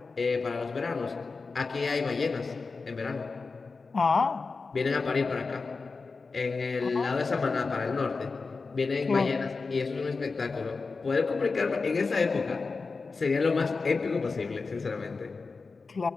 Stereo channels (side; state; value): right; quieter; 4.3 dB